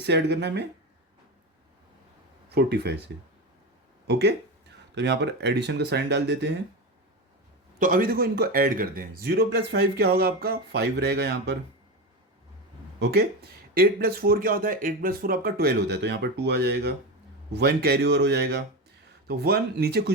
ऐड करना है हमें 45 से। ओके, तो यहाँ पर एडिशन का साइन डाल देते हैं। तो अभी देखो इनको ऐड करते हैं, 0 + 5 क्या होगा आपका 5 रहेगा यहाँ पर। ओके, 8 + 4 क्या होता है, 8 + 4 आपका 12 होता है, तो यहाँ पर 2 आ जाएगा, 1 कैरी ओवर हो जाएगा, तो 1 नीचे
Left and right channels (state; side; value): normal; both; correlation 0.19